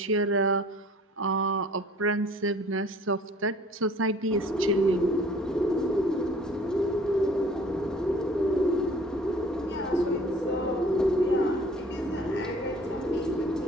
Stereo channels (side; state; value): both; normal; correlation 0.51